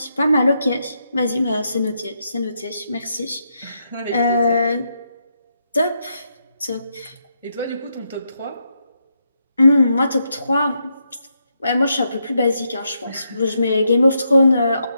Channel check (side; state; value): both; inverted; correlation -0.80